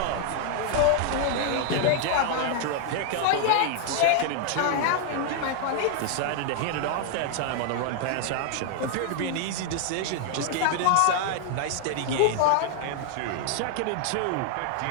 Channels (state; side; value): different; both; correlation 0.00